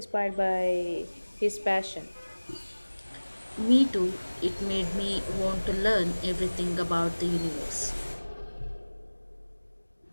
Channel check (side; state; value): both; inverted; correlation -1.00